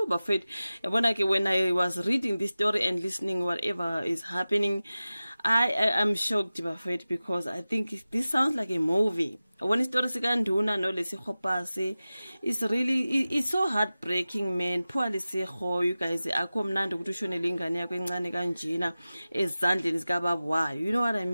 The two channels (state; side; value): inverted; both; correlation -0.96